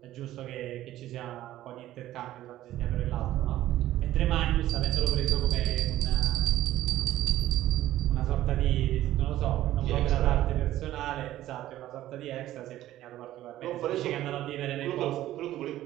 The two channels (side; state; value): left; quieter; 14.1 dB